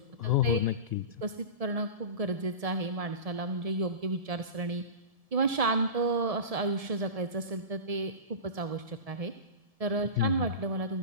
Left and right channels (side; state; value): left; late; 1.7 ms